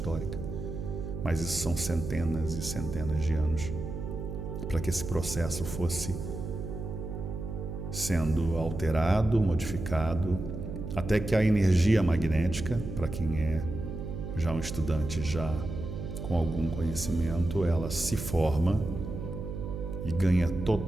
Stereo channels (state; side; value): noise; right; hum, 7 dB below the sound